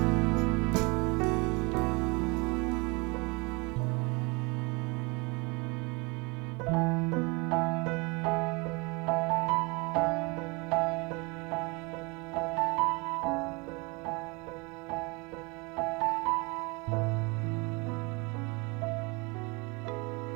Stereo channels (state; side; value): quieter; left; 28.4 dB